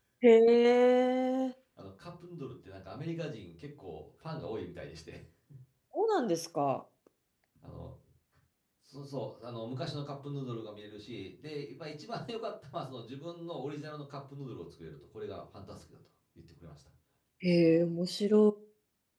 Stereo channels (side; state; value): both; identical; correlation 1.00